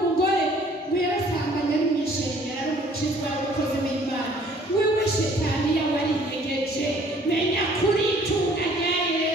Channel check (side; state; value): both; normal; correlation 0.56